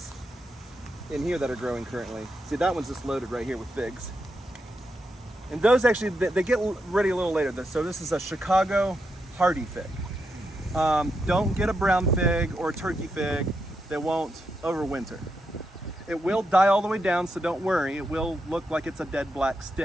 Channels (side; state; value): both; normal; correlation 0.84